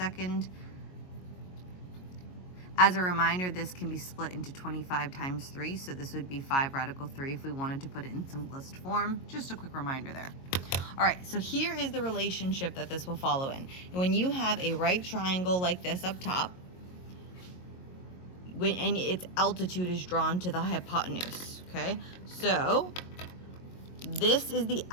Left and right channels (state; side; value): late; right; 22 ms